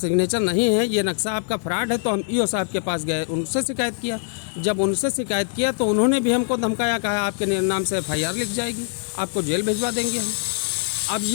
नहीं है, ये नक्शा आपका फ्रॉड है, तो हम EO साहब के पास गए, उनसे शिकायत किया। जब उनसे शिकायत किया तो उन्होंने भी हमको धमकाया, कहा आपके नाम से FIR लिख जाएगी, आपको जेल भिजवा देंगे हम। अब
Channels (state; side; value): silent; right; 61 dB below the other